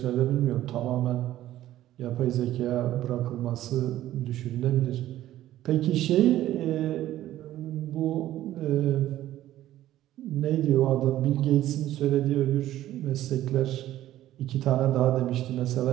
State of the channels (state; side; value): quieter; left; 13.7 dB